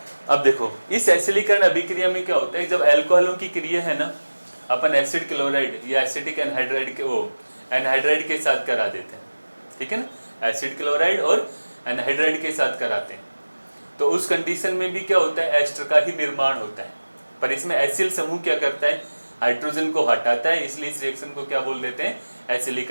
अब देखो इस एसिलीकरण अभिक्रिया में क्या होता है? जब अल्कोहलों की क्रिया है ना, अपन एसिड क्लोराइड या एसिटिक एनहाइड्राइड के वो एनहाइड्राइड के साथ करा देते हैं, ठीक है ना? एसिड क्लोराइड और एनहाइड्राइड के साथ कराते हैं तो उस कंडीशन में भी क्या होता है? एस्टर का ही निर्माण होता है। पर इसमें एसिल समूह क्या करता है? हाइड्रोजन को हटाता है। इसलिए इस रिएक्शन को क्या बोल देते हैं?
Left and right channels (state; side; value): inverted; both; correlation -1.00